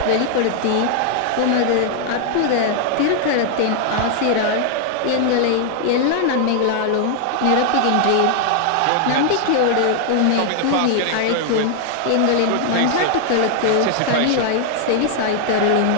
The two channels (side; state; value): both; different; correlation 0.00